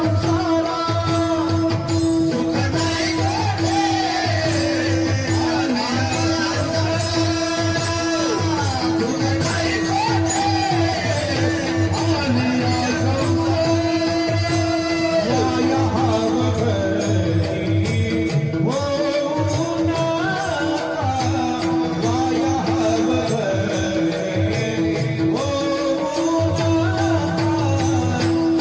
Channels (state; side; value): identical; both; correlation 1.00